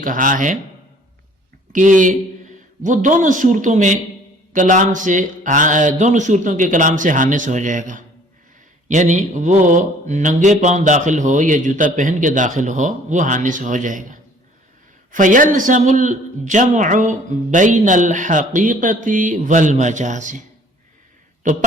کہا ہے کہ وہ دونوں صورتوں کے کلام سے حانث ہو جائے گا، یعنی وہ ننگے پاؤں داخل ہو یا جوتا پہن کے داخل ہو وہ حانث ہو جائے گا۔ فَيَلْزَمُ الْجَمْعُ بَيْنَ الْحَقِيقَةِ وَالْمَجَازِ، تو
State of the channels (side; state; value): both; normal; correlation 0.54